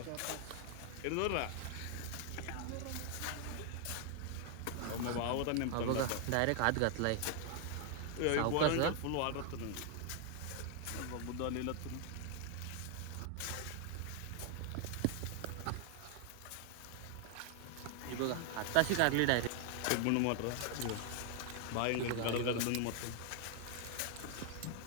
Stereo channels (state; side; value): different; both; correlation 0.00